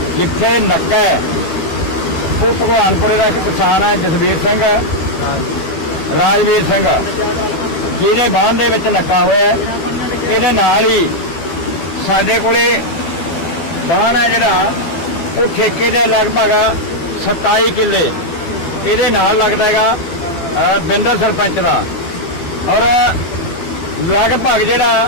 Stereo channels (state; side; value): late; right; 12 ms